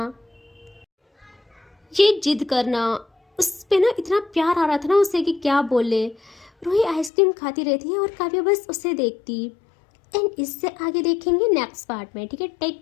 ये जिद करना, उस पे ना इतना प्यार आ रहा था ना उसे कि क्या बोले। रूही आइसक्रीम खाती रहती है और काव्या बस उसे देखती। एंड इससे आगे देखेंगे नेक्स्ट पार्ट में, ठीक है,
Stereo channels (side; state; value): right; drops out; at 7.1 s